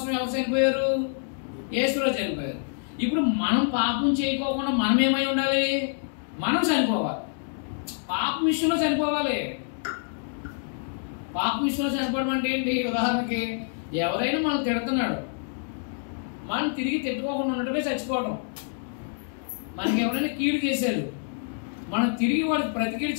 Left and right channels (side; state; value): right; silent; digital silence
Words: ఎవరు చనిపోయారు? యేసులో చనిపోయారు. ఇప్పుడు మనం పాపం చేయకోకుండా మనం ఏమై ఉండాలి? మనం చనిపోవాలి. పాపం విషయంలో చనిపోవాలి. పాపం విషయంలో చనిపోవడం అంటే ఏంటి? ఉదాహరణకి ఎవరైనా మనం తిడుతున్నాడు, మనం తిరిగి తిట్టుకోకుండా ఉండటమే చచ్చిపోవడం. మనకి ఎవరైనా కీడు చేశారు, మనం తిరిగి వాళ్ళకి ప్రతికీడు